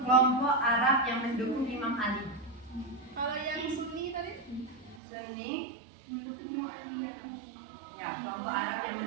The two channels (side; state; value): left; drops out; at 5.0 s